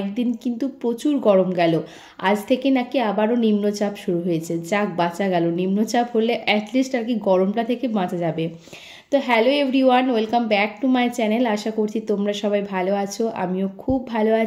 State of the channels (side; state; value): both; identical; correlation 1.00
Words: কিন্তু প্রচুর গরম গেল। আজ থেকে নাকি আবারও নিম্নচাপ শুরু হয়েছে। যাক, বাঁচা গেল। নিম্নচাপ হলে অ্যাটলিস্ট আর কি গরমটা থেকে বাঁচা যাবে। তো hello everyone, welcome back to my channel. আশা করছি তোমরা সবাই ভালো আছো, আমিও খুব ভালো